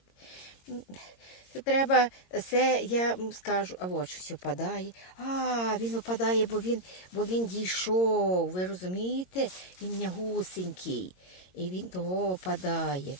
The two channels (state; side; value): late; right; 22 ms